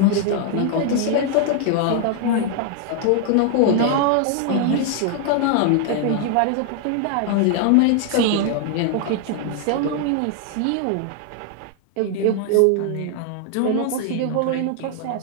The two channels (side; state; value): both; different; correlation 0.00